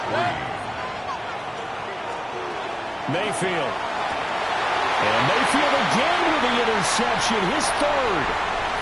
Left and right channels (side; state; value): both; identical; correlation 1.00